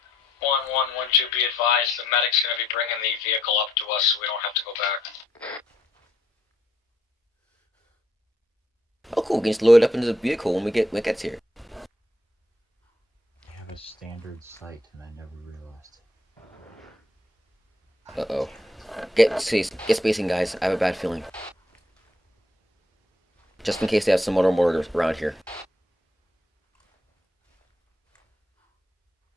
1-1-1-2, be advised, the medic's gonna be bringing the vehicle up to us so we don't have to go back. Oh, cool. We can just load it up into the vehicle when when it gets here. They have a standard sight, and I never realized. Uh-oh. Get spacing, guys. I have a bad feeling. Just in case they have some other mortars around here.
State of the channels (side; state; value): both; normal; correlation 0.72